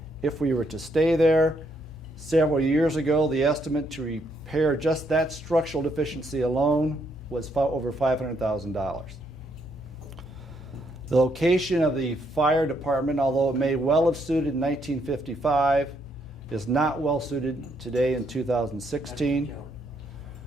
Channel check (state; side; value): normal; both; correlation 0.74